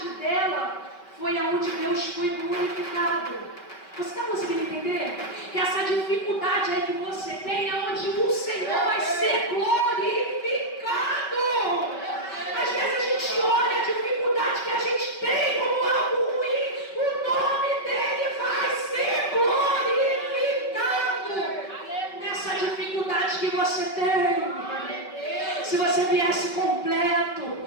dela foi aonde Deus foi glorificado. Você está conseguindo entender? Que essa dificuldade aí que você tem é onde o Senhor vai ser glorificado. Às vezes a gente olha a dificuldade que a gente tem como algo ruim, o nome dele vai ser glorificado. Nessa dificuldade que você tem, se você viesse completo,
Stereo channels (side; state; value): right; late; 5.2 ms